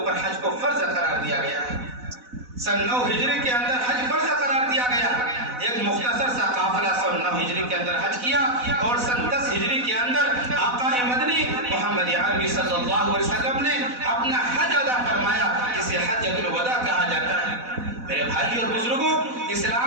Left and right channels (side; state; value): left; late; 4.0 ms